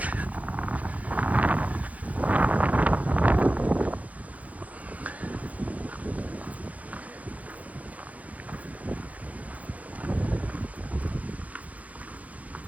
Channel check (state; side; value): late; left; 0.071 ms